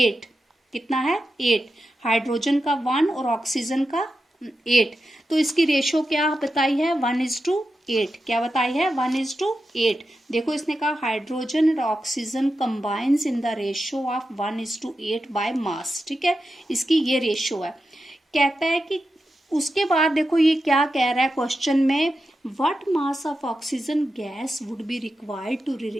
कितना है, 8। हाइड्रोजन का 1 और ऑक्सीजन का 8। तो इसकी रेशो क्या बताई है, 1:8। क्या बताई है, 1:8। देखो इसने कहा हाइड्रोजन और oxygen combines in the ratio of 1:8 by mass. ठीक है, इसकी ये रेशो है। कहता है कि उसके बाद देखो ये क्या कह रहा है क्वेश्चन में, what mass of oxygen gas would be required to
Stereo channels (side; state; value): both; normal; correlation 0.90